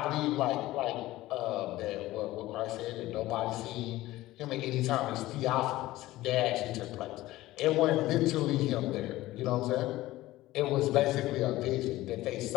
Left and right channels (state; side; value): quieter; right; 17.0 dB